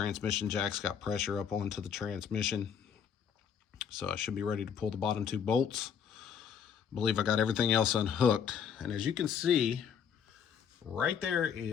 jack's got pressure up onto the transmission. So I should be ready to pull the bottom 2 bolts. I believe I got everything else unhooked. And as you can see, right there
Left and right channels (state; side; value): quieter; right; 7.7 dB